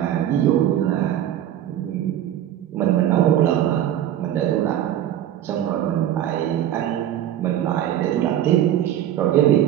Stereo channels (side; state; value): left; quieter; 11.5 dB